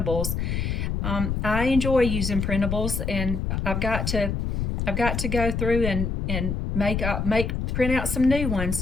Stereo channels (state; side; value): noise; left; rumble, 1 dB below the sound